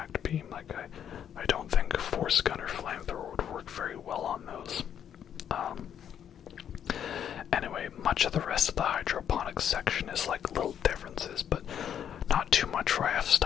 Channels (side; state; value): right; quieter; 9.2 dB